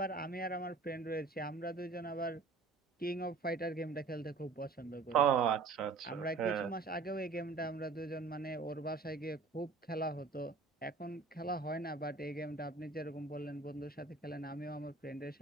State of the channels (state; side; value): quieter; left; 4.1 dB